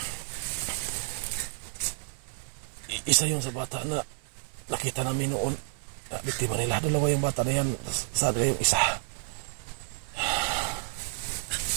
Isa yun sa bata na nakita namin noon. Biktima nila. Dalawa yung bata na yan. Saan yung isa?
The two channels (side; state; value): left; silent; 58 dB below the other